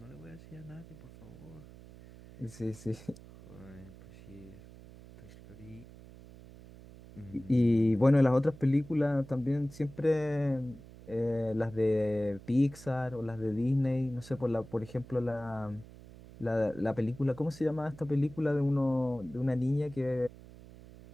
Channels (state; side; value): noise; right; hum, 19 dB below the sound